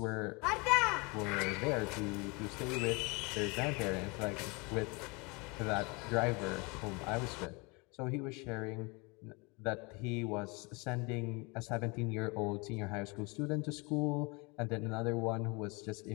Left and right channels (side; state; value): right; quieter; 28.7 dB